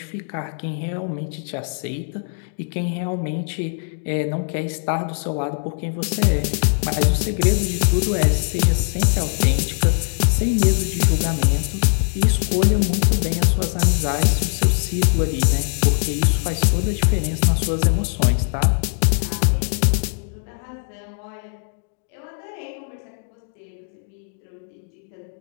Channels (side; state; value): right; silent; digital silence